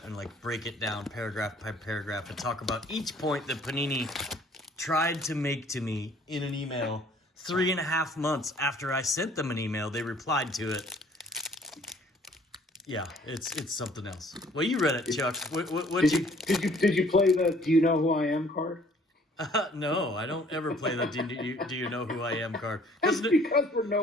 and, like, break it down paragraph by paragraph and talk about each point that Panini tried to make to me in an email 3.5 months after I sent them an email. They replied to it. Yeah, it's something else. Well, you read it, Chuck. Did you play the "Do you know who I am" card? No, I don't ever play the "Do you know who I am" card. That's because we're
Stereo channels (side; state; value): both; normal; correlation 0.57